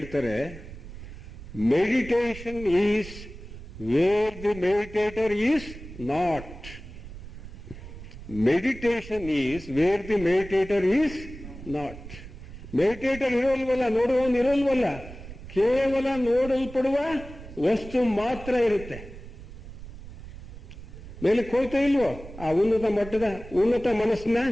meditation is where the meditator is not. Meditation is where the meditator is not. Meditator ಇರೋಲ್ವಲ್ಲ, ನೋಡುವವನು ಇರೋಲ್ವಲ್ಲ, ಕೇವಲ ನೋಡಲ್ಪಡುವ ವಸ್ತು ಮಾತ್ರ ಇರುತ್ತೆ. ಮೇಲಕ್ಕೆ ಹೋಗ್ತಾ ಇಲ್ವೋ? ಆ ಉನ್ನತ ಮನಸ್ಸಿನ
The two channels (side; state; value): right; noise; rumble, 14 dB below the sound